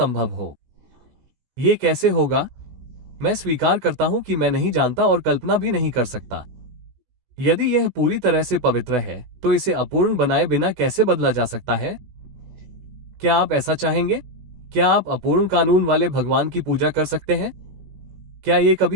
हो। ये कैसे होगा? मैं स्वीकार करता हूं कि मैं नहीं जानता और कल्पना भी नहीं कर सकता। यदि यह पूरी तरह से पवित्र है, तो इसे अपूर्ण बनाए बिना कैसे बदला जा सकता है? क्या आप ऐसा चाहेंगे? क्या आप अपूर्ण कानून वाले भगवान की पूजा कर सकते हैं? क्या ये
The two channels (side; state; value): left; late; 16 ms